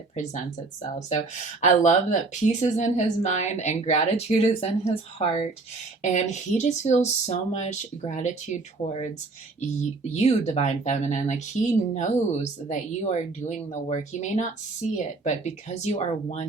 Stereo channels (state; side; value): quieter; left; 3.7 dB